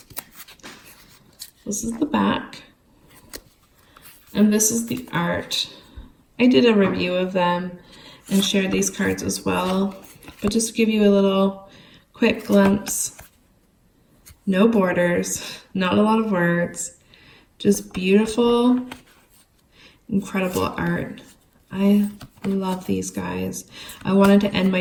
This is the back, and this is the art. I did a review of them and shared these cards as well, but just to give you a little quick glimpse, no borders, not a lot of words, just beautiful, incredible art. I love these guys. I wanted to end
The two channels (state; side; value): identical; both; correlation 1.00